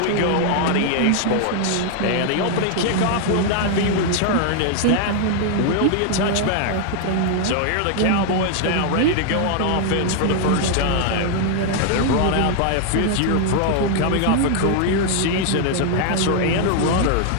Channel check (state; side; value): different; both; correlation 0.00